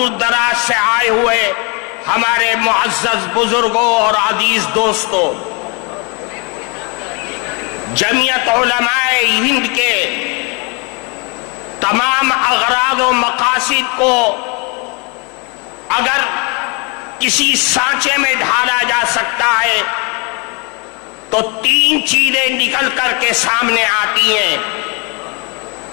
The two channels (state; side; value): quieter; right; 32.2 dB